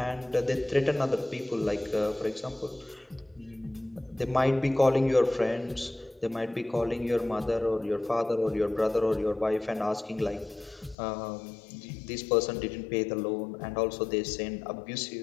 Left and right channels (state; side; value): drops out; right; at 11.0 s